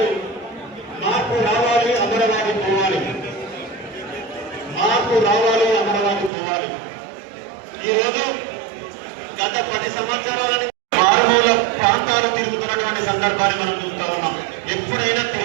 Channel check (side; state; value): left; drops out; at 6.3 s